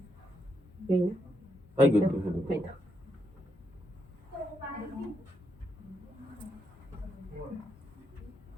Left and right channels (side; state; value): both; normal; correlation 0.80